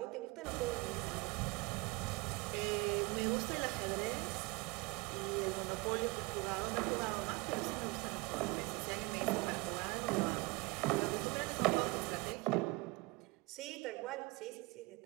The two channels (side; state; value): left; quieter; 25.9 dB